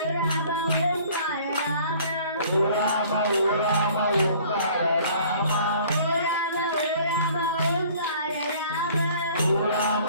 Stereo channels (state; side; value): inverted; both; correlation -0.53